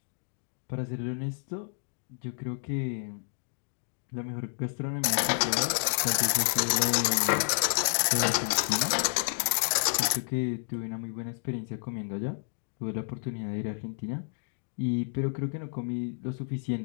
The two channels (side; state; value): right; silent; digital silence